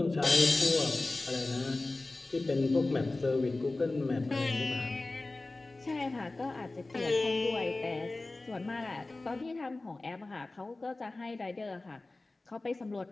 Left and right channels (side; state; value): right; quieter; 3.1 dB